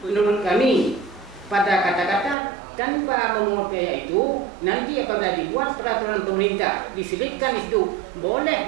Menurut kami, pada kata-kata tanpa memungut biaya itu, nanti apabila dibuat peraturan pemerintah diselipkan itu boleh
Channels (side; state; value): left; drops out; at 2.4 s